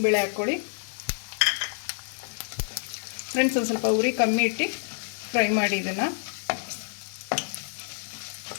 ಹಾಕ್ಕೊಳ್ಳಿ ಫ್ರೆಂಡ್ಸ್. ಒಂದು ಸ್ವಲ್ಪ ಉರಿ ಕಮ್ಮಿ ಇಟ್ಟು ಫ್ರೈ ಮಾಡಿ ಇದನ್ನು.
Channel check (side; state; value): right; silent; 60 dB below the other